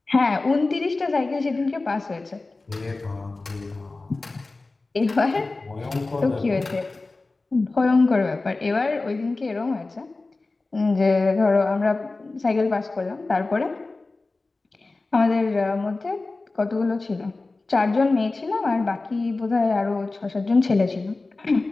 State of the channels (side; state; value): right; quieter; 3.4 dB